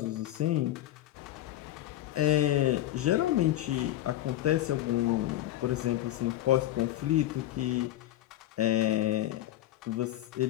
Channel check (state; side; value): quieter; right; 14.0 dB